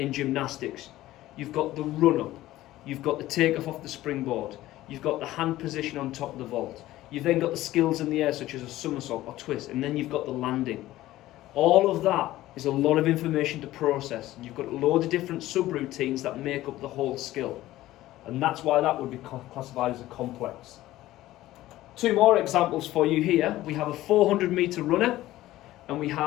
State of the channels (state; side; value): quieter; right; 15.7 dB